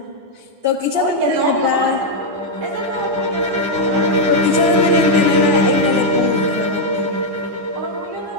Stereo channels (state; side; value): late; left; 9.9 ms